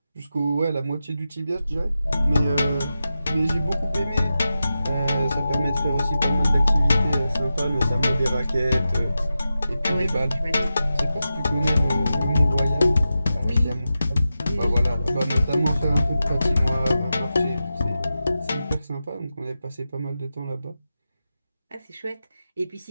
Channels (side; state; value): both; inverted; correlation -0.91